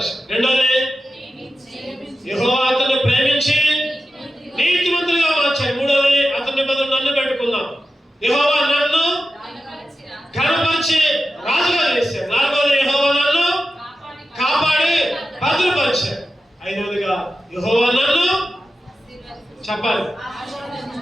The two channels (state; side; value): normal; both; correlation 0.92